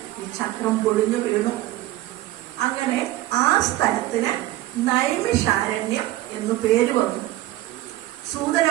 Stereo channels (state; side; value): quieter; left; 15.9 dB